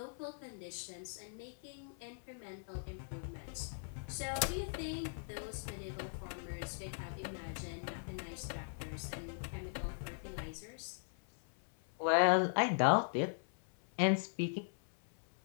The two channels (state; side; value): silent; right; 51 dB below the other